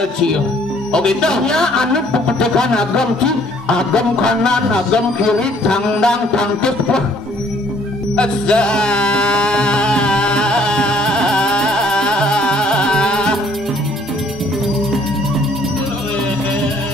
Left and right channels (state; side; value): normal; both; correlation 0.61